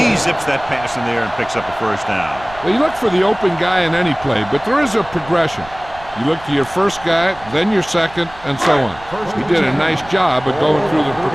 zips that pass in there and picks up a first down. Well, you look for the open guy in any play, but there is a progression. You look to your first guy, then your second, and so on. He did a nice job of going through the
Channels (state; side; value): noise; right; rumble, 19 dB below the sound